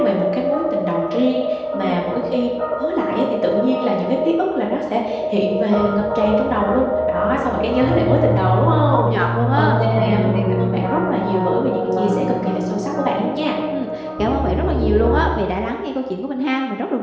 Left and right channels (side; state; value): both; identical; correlation 1.00